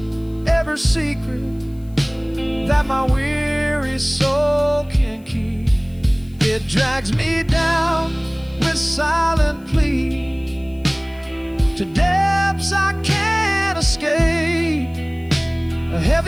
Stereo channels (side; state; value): left; noise; hiss, 30 dB below the sound